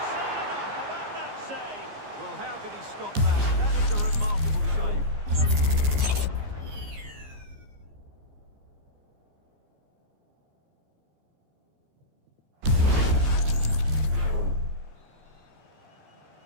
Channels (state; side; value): late; left; 14 ms